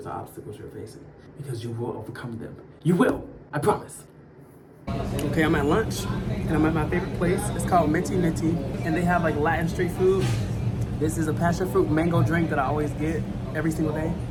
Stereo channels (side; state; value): both; identical; correlation 1.00